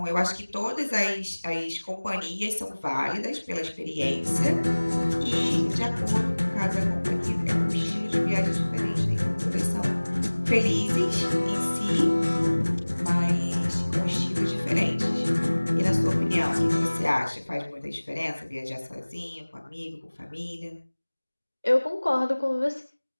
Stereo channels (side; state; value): both; inverted; correlation -1.00